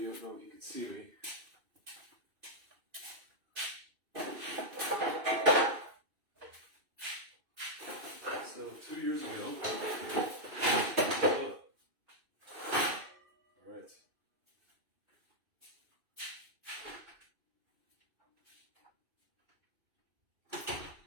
you don't know if you can see me. So, 2 years ago, alright.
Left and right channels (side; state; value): left; late; 2.6 ms